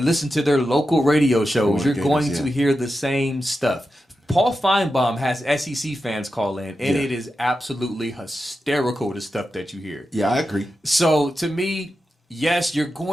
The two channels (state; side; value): normal; both; correlation 0.90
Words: listen to their local radio shows, you're going to hear the same stuff. Paul Feinbaum has SEC fans call in, and it is absolutely hysterical, the stuff that you hear. Yeah, I agree. So, to me, yes, you're